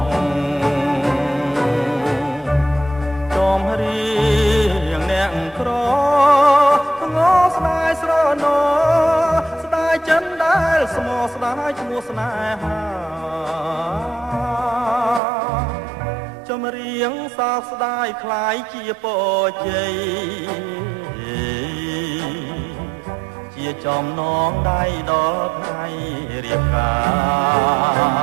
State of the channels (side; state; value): left; drops out; at 15.2 s